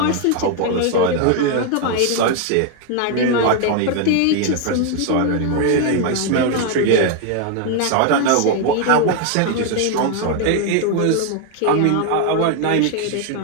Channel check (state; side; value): different; both; correlation 0.00